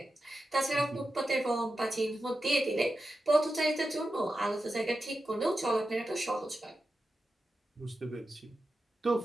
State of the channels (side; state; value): both; normal; correlation 0.91